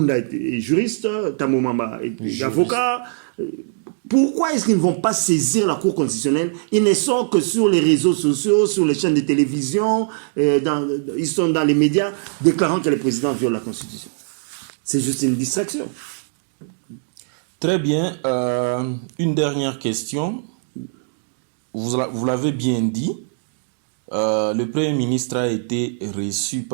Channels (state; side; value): silent; left; digital silence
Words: est juriste, Tamou Mamba est avocat. Pourquoi est-ce qu'ils ne vont pas saisir la Cour constitutionnelle? Ils ne sont que sur les réseaux sociaux, sur les chaînes de télévision, ils sont dans les médias déclarant que le président viole la Constitution. C'est juste une distraction. Très bien. Une dernière question. Vous l'avez bien dit. Le Premier ministre a été reçu